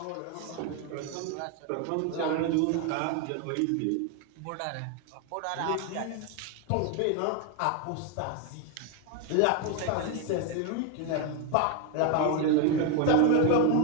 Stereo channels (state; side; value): different; both; correlation 0.01